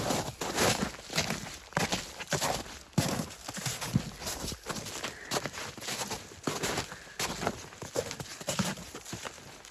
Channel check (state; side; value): identical; both; correlation 1.00